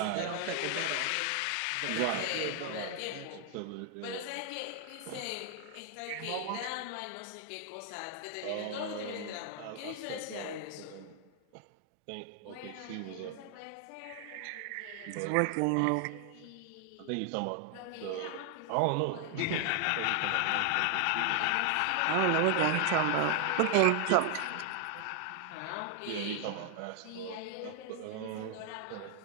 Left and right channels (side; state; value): both; different; correlation 0.00